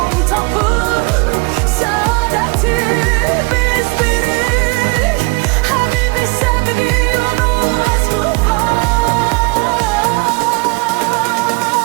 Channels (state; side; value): quieter; left; 29.0 dB